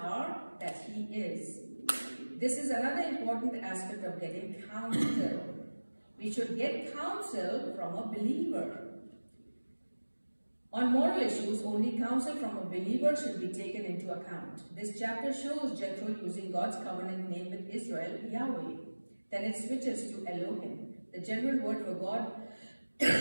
that he is. This is another important aspect of getting counsel. We should get counsel from a believer. On moral issues, only counsel from a believer should be taken into account. This chapter shows Jethro using God's covenant name with Israel, Yahweh. Then it switches to Elohim, the general word for God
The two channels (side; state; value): both; inverted; correlation -1.00